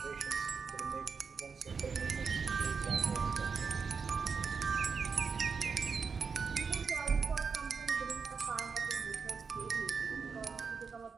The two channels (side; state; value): left; quieter; 5.5 dB